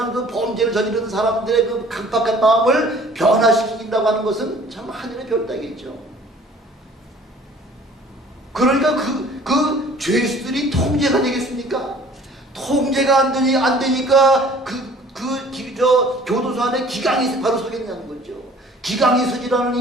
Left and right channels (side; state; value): both; normal; correlation 0.51